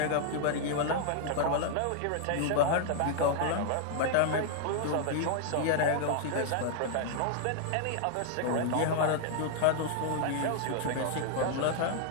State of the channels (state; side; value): different; both; correlation 0.00